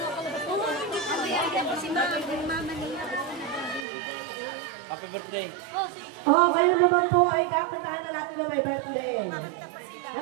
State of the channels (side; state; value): left; drops out; at 3.9 s